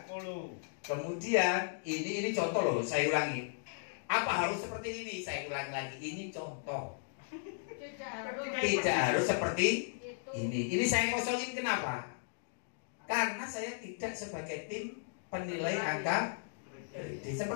Kemudian ini contoh loh, saya ulangi. Apa harus seperti ini? Saya ulangi lagi, ini contoh. Tidak harus seperti ini. Ini saya kosongin kenapa? Karena saya tidak sebagai tim penilai angka kredit.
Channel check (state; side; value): silent; right; digital silence